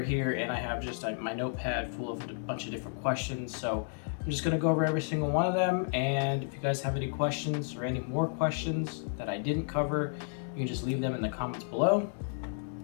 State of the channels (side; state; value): right; silent; digital silence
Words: here and I have just my notepad full of a bunch of different questions. So I'm just going to go over every single one of them, and if you guys have any questions or any more questions that I didn't cover, you can just leave them in the comments below.